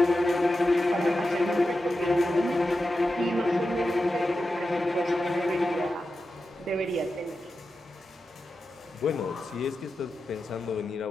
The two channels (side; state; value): both; normal; correlation 0.91